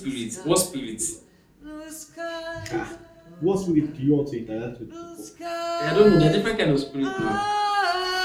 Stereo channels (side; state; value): both; identical; correlation 1.00